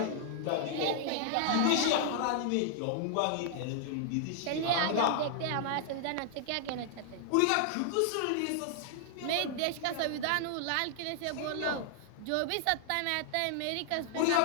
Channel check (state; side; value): different; both; correlation -0.01